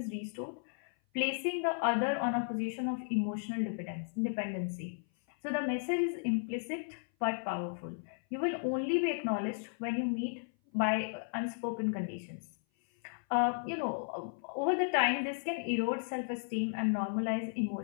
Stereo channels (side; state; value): right; silent; 55 dB below the other